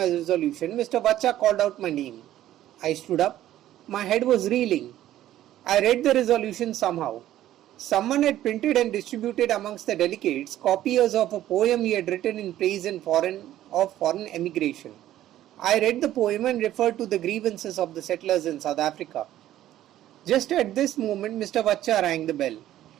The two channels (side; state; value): left; quieter; 13.1 dB